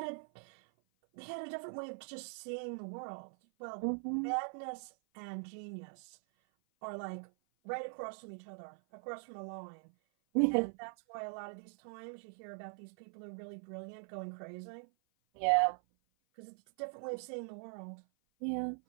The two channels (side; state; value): left; silent; 50 dB below the other